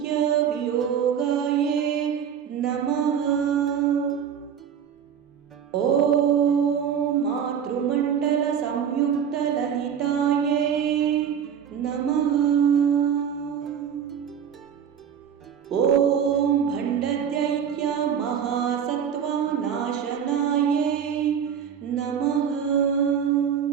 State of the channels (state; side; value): quieter; left; 8.2 dB